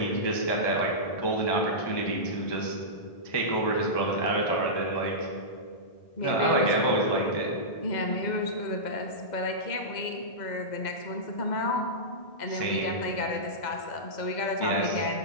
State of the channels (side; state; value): right; late; 2.0 ms